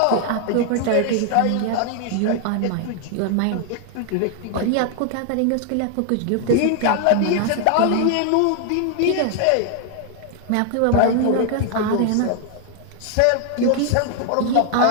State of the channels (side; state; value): both; different; correlation 0.00